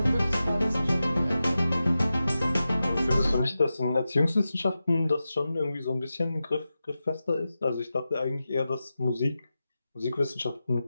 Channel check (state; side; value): inverted; both; correlation -0.92